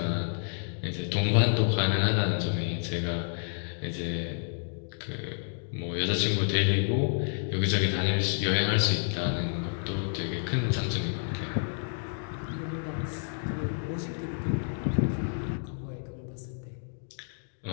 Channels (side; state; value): right; silent; digital silence